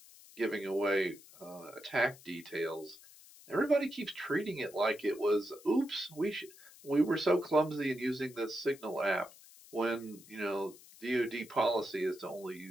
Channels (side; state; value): left; noise; hiss, 21 dB below the sound